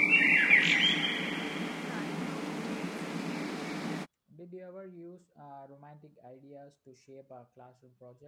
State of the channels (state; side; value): identical; both; correlation 1.00